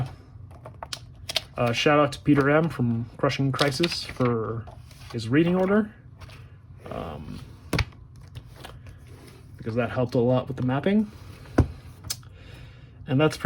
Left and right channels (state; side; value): identical; both; correlation 1.00